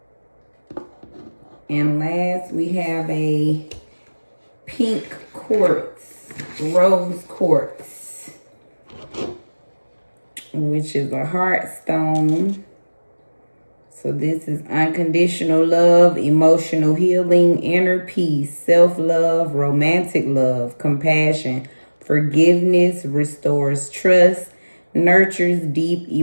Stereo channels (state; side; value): inverted; both; correlation -1.00